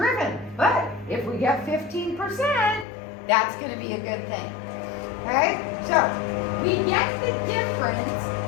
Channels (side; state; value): right; drops out; at 2.9 s